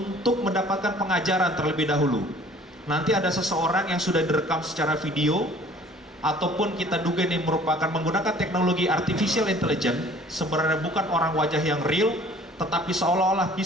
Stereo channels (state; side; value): normal; both; correlation 0.52